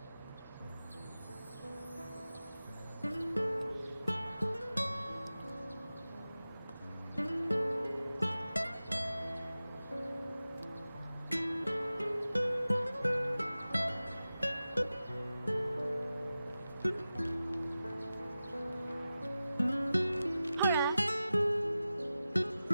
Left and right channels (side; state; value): both; inverted; correlation -0.94